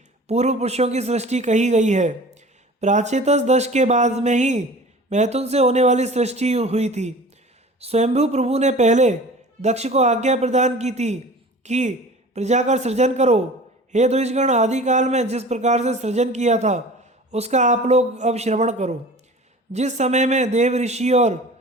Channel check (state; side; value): normal; both; correlation 0.41